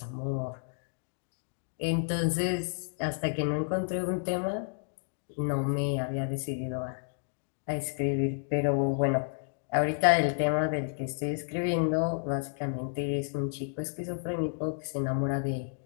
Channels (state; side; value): silent; right; digital silence